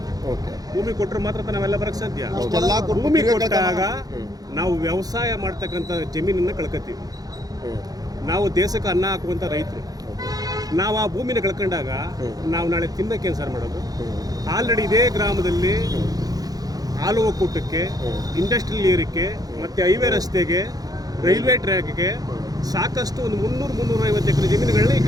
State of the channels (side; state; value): left; late; 0.18 ms